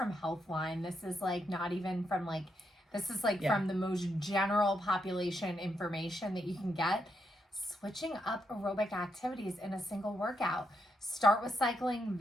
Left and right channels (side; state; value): both; normal; correlation 0.81